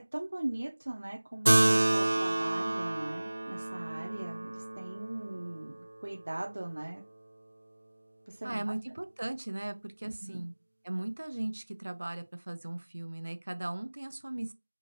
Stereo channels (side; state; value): both; inverted; correlation -1.00